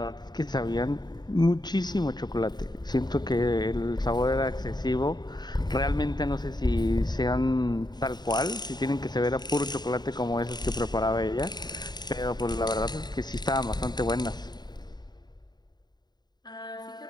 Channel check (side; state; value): right; late; 0.20 ms